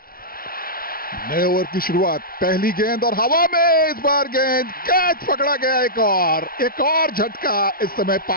नए ओवर की शुरुआत पहली गेंद और हवा में इस बार गेंद कैच पकड़ा गया। एक और झटका इस समय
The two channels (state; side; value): late; right; 0.42 ms